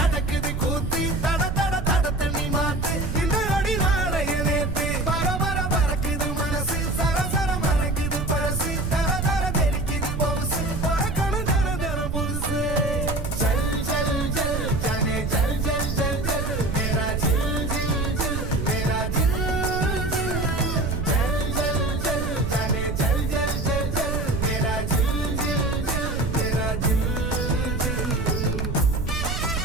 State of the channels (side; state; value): right; noise; rumble, 3 dB below the sound